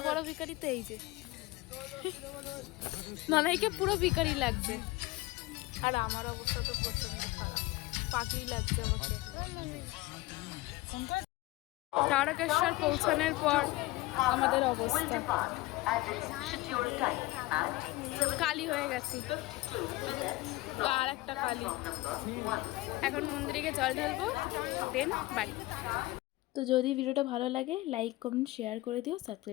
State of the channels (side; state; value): right; quieter; 19.9 dB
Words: বড় ভিখারি তো এই যে নানাইকে পুরো ভিখারি লাগছে। আর আমার অবস্থা তো প্রচন্ড খারাপ, পাগলি লাগছে আমাকে। তারকেশ্বর পৌঁছানোর পর আমাদের অবস্থা কালি হয়ে গেছি, আর একটা কালি। এখন মন্দিরে জল ঢালবো, দেন বাড়ি। তো যদি ভিডিওটা ভালো লাগে লাইক কমেন্ট শেয়ার করে দিও,